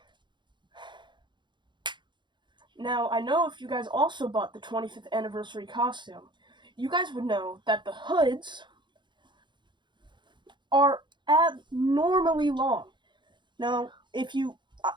Now, I know if you guys also bought the 25th anniversary costume, you guys would know that the hoods are abnormally long. Now, if you,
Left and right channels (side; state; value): left; late; 0.22 ms